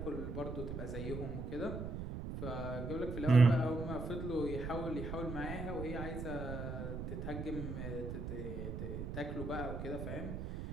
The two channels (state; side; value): noise; right; rumble, 5 dB below the sound